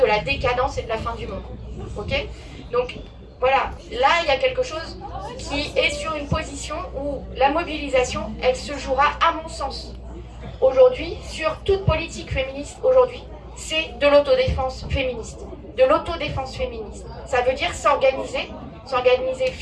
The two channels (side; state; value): both; identical; correlation 1.00